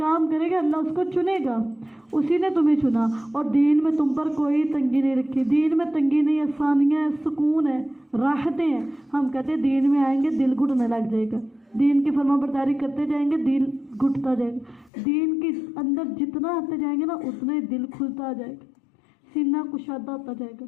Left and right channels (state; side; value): drops out; right; at 14.9 s